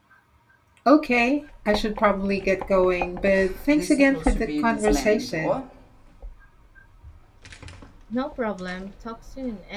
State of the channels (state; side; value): identical; both; correlation 1.00